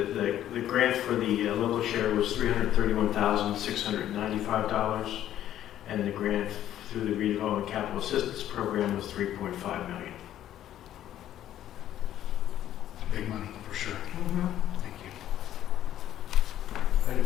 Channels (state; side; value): quieter; right; 11.9 dB